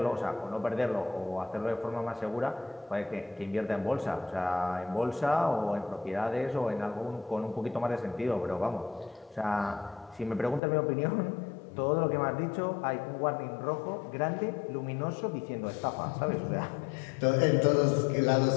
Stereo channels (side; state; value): right; drops out; at 10.6 s